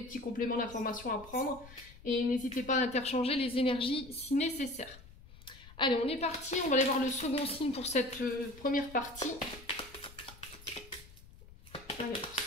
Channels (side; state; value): left; noise; rumble, 20 dB below the sound